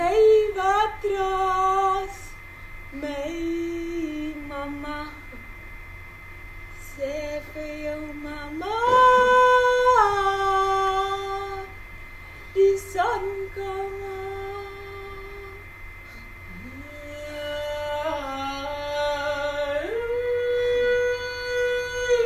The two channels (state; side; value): identical; both; correlation 1.00